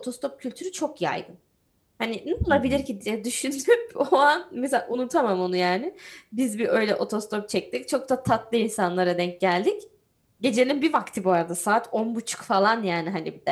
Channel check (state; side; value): identical; both; correlation 1.00